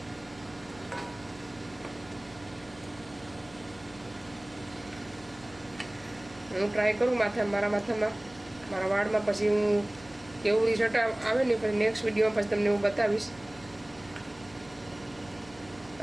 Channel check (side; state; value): right; noise; hum, 22 dB below the sound